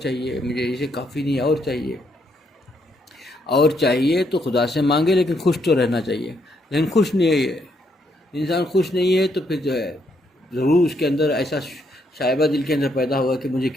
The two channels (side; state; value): both; normal; correlation 0.74